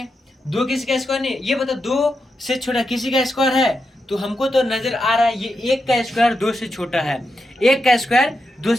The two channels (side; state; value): both; normal; correlation 0.86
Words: 2 किसी का स्क्वायर नहीं है। ये बताओ 2 से छोटा किसी का स्क्वायर है, तो हमको तो नजर आ रहा है ये 1 का स्क्वायर 2 से छोटा है, 1 का स्क्वायर 2